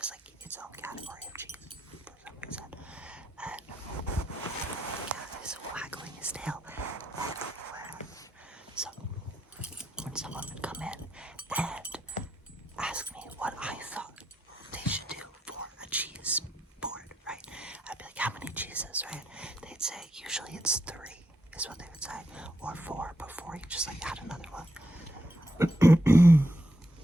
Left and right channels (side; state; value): both; normal; correlation 0.81